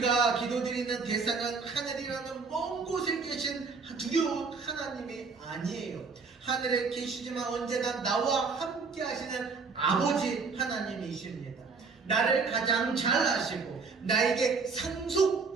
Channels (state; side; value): quieter; left; 4.8 dB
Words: 기도드리는 대상은 하늘이라는 먼 곳에 계신 두려운 하나님이 아니에요. 하늘에 계시지만 언제나 나와 함께 하시는 아버지 하나님이십니다. 나를 가장 잘 아시고 나에게